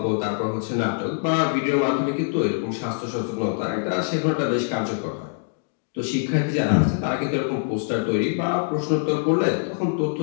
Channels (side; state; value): right; silent; digital silence